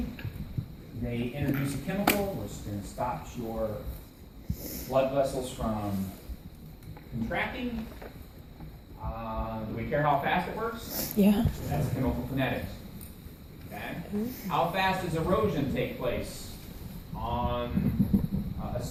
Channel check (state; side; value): identical; both; correlation 1.00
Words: They introduce a chemical which is going to stop your blood vessels from contracting. Do we care how fast it works? Yeah. That's chemical kinetics. Okay? How fast does erosion take place on a